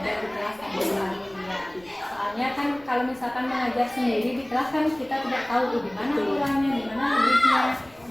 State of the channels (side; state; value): left; noise; rumble, 27 dB below the sound